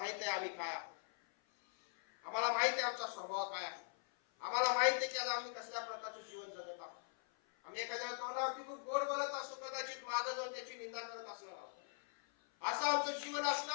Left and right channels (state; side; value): silent; right; 50 dB below the other